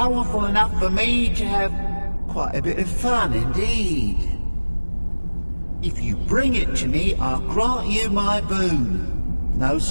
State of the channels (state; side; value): inverted; both; correlation -1.00